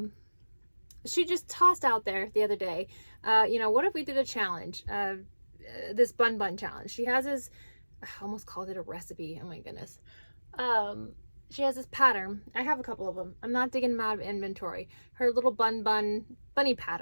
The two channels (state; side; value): inverted; both; correlation -1.00